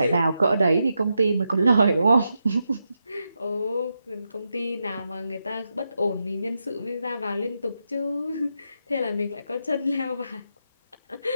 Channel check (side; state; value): both; inverted; correlation -0.85